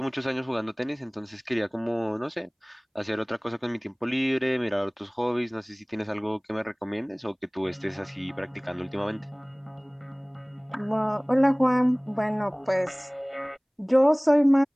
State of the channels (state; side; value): identical; both; correlation 1.00